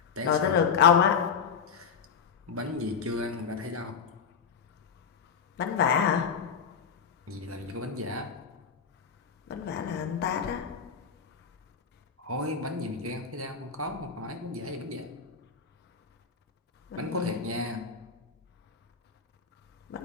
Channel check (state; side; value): quieter; right; 6.3 dB